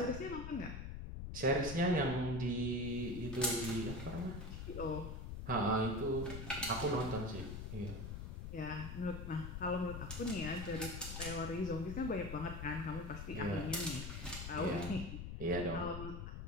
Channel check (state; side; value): noise; left; rumble, 6 dB below the sound